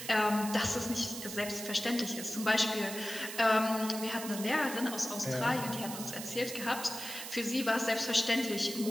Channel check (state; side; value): noise; right; hiss, 8 dB below the sound